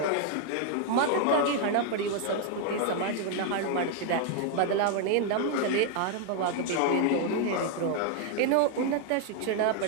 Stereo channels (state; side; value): different; both; correlation 0.00